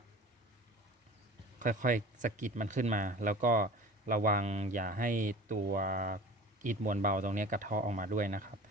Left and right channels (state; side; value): normal; both; correlation 0.40